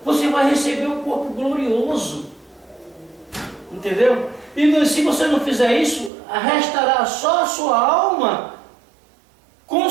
você vai receber um corpo glorioso. Entendeu? E se você não fizer isso, restará só a sua alma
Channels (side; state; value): left; drops out; at 6.1 s